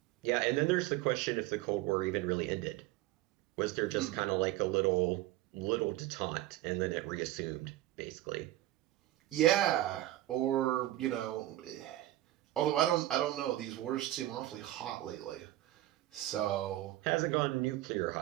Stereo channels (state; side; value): quieter; left; 15.4 dB